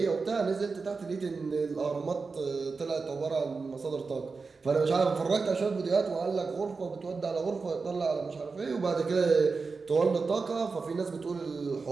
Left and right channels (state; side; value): quieter; left; 4.5 dB